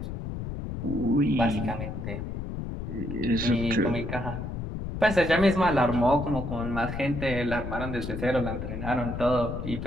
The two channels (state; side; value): noise; left; rumble, 6 dB below the sound